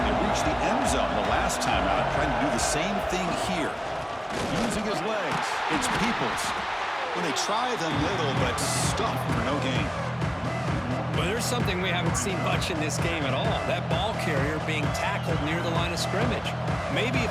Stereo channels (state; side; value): identical; both; correlation 1.00